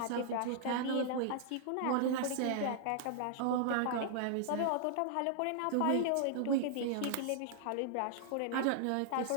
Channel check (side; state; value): both; different; correlation -0.01